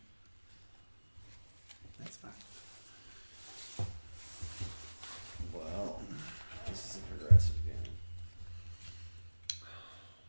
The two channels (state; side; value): inverted; both; correlation -1.00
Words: That's fine. Wow. This is a progressive game.